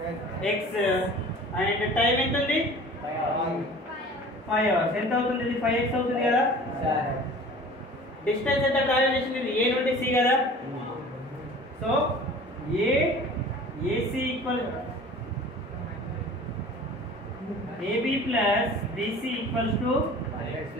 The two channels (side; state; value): both; normal; correlation 0.43